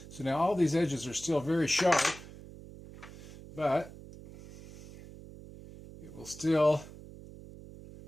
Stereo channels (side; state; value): right; noise; hum, 17 dB below the sound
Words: So now all these edges are still very sharp, but it will still